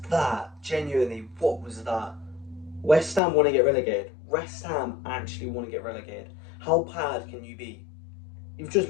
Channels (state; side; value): drops out; right; at 3.2 s